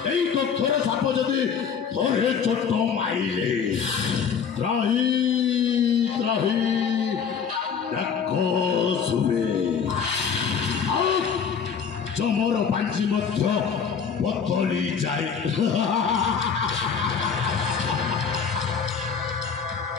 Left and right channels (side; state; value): right; quieter; 6.7 dB